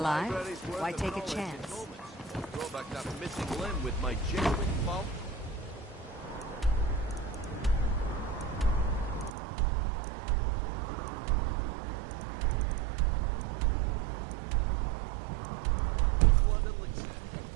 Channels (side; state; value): left; drops out; at 9.3 s